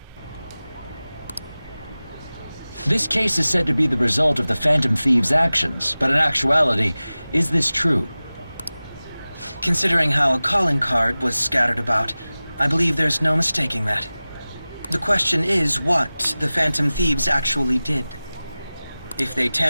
This case is said to be the result of the Phantom Thieves' actions, but in actuality, is this true? Considering how a calling card was scattered about, I believe there's no mistaking that. The question is what the Phantom Thieves actually did. If they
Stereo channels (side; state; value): both; inverted; correlation -0.97